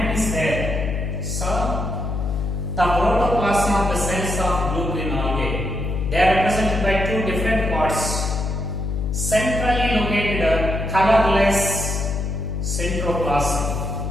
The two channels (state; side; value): noise; left; hum, 2 dB below the sound